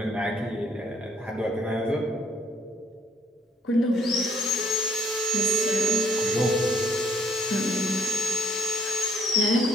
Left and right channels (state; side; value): normal; both; correlation 0.65